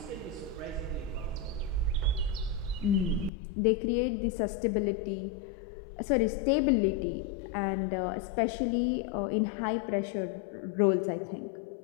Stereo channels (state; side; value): drops out; right; at 3.3 s